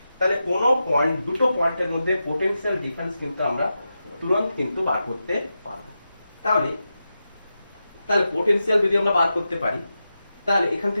তাহলে কোন পয়েন্ট, দুটো পয়েন্টের মধ্যে পোটেনশিয়াল ডিফারেন্স কিন্তু আমরা তুরন্ত কিন্তু বার করতে পারবো। তাহলে পোটেনশিয়াল যদি আমরা বার করতে পারি তাহলে এখান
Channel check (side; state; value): both; inverted; correlation -0.90